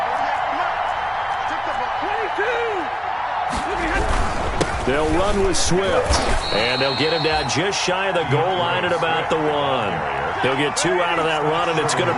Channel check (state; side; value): identical; both; correlation 1.00